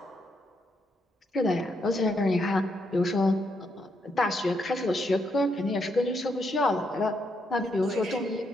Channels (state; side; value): normal; both; correlation 0.78